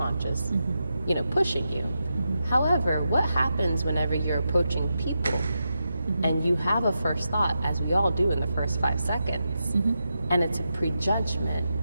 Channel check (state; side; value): inverted; both; correlation -0.88